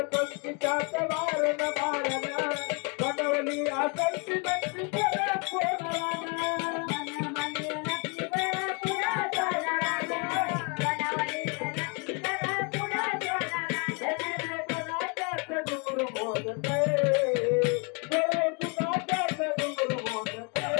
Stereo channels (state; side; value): quieter; right; 33.8 dB